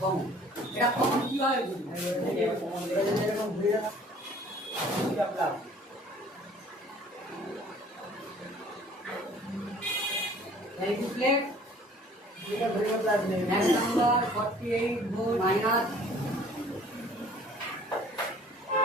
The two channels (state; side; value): normal; both; correlation 0.52